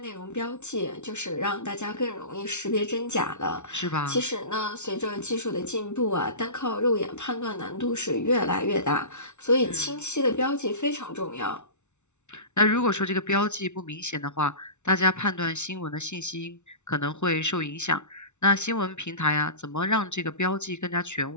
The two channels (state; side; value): late; right; 0.82 ms